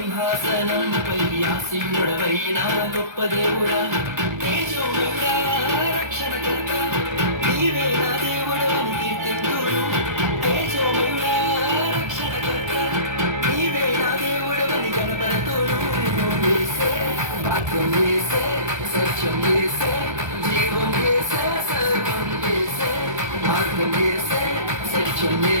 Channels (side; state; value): left; late; 1.3 ms